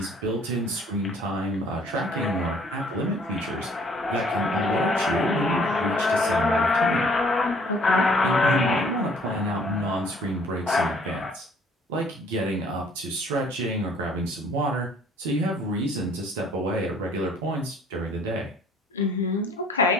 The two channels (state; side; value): normal; both; correlation 0.58